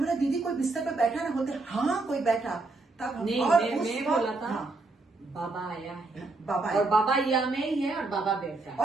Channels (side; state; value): left; quieter; 3.3 dB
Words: दीदी कोई बिस्तर पर बैठा ना होते? हाँ कोई बैठा। तब नहीं, और मैं बोला था हाँ, बाबा आया है, बाबा और बाबा यहाँ में ही है, और बाबा बैठा है।